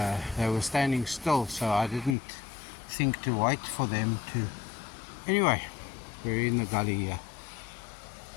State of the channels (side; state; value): right; drops out; at 2.1 s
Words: They were standing still, so I didn't think to wait for them to. Anyway, we're in the gully here.